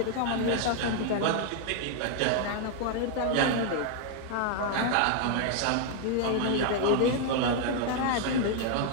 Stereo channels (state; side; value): different; both; correlation 0.00